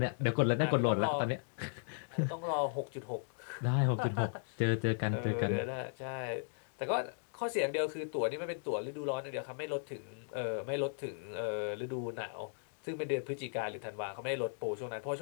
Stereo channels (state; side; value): silent; right; digital silence